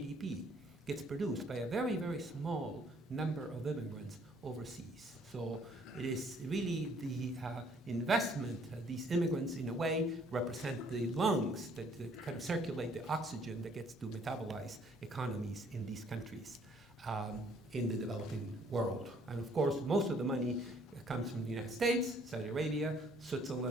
gets produced by a very, very small number of immigrants overseas. So it is really the investment, these immigrants in a way represent the lungs that kind of circulate the oxygen that gets to metabolize economies in these countries in the developing world. And of course, most of the money comes from the United States, Saudi Arabia,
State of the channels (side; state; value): both; normal; correlation 0.62